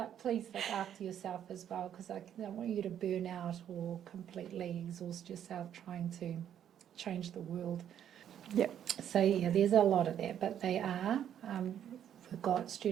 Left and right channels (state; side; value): quieter; left; 9.8 dB